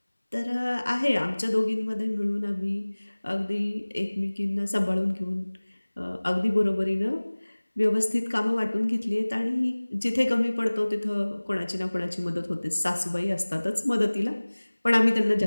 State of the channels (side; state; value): both; inverted; correlation -1.00